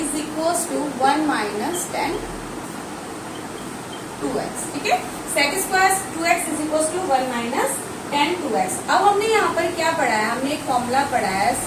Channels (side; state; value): both; identical; correlation 1.00